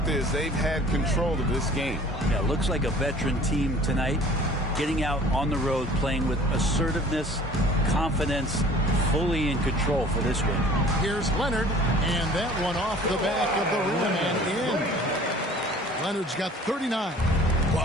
is they've had control of this game. Yeah, looks like a veteran team tonight. Getting out on the road, playing with assertiveness, confidence, fully in control for this one. Here's Leonard, and that one off the back of the rim and in. Leonard's got 39.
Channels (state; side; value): normal; both; correlation 0.49